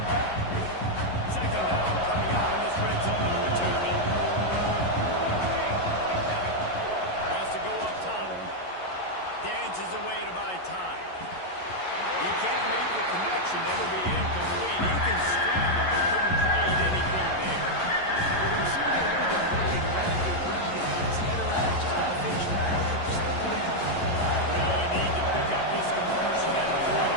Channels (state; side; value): late; right; 11 ms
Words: Second down coming out in this red zone opportunity. Wants to go up top. Dances away to buy time. He can't make the connection. It'll be incomplete. He can scramble, but couldn't create anything there. Well, the receiver did everything right. He ran a good route. He got his head around it. Just got to finish the play. Just look at it. Really need to pick up this conversion and avoid